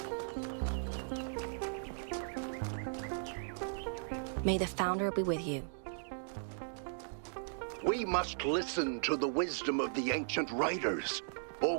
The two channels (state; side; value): silent; left; digital silence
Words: May the Founder be with you. We must listen to the wisdom of the ancient writers, or